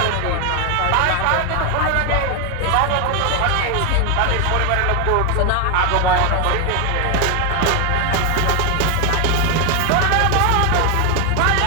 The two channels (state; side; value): different; both; correlation 0.01